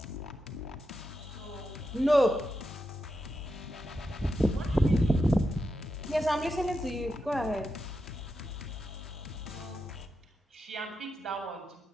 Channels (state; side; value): normal; both; correlation 0.87